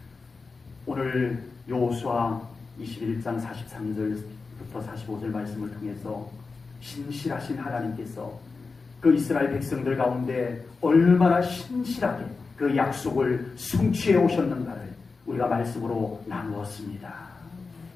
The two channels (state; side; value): quieter; right; 4.3 dB